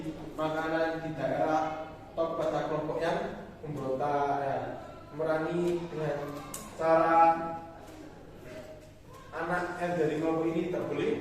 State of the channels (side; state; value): both; identical; correlation 1.00